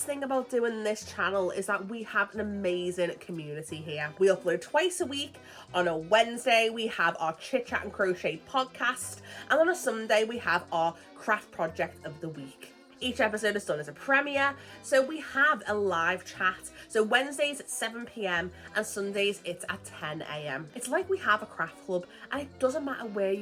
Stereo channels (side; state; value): both; identical; correlation 1.00